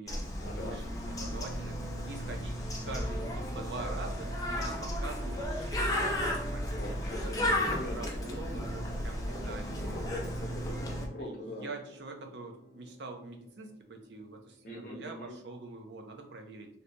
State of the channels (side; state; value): both; normal; correlation 0.48